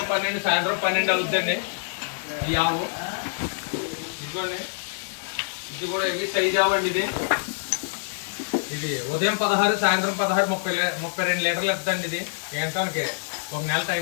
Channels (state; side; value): silent; right; digital silence